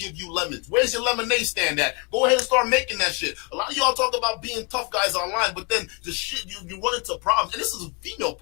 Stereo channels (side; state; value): right; quieter; 33.5 dB